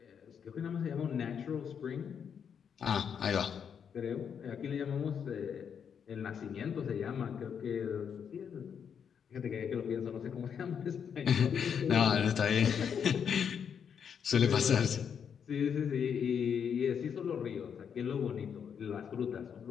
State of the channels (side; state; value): right; quieter; 7.5 dB